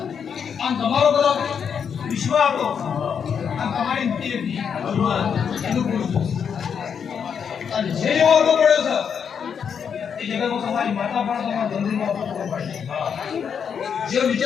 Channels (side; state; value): right; quieter; 7.2 dB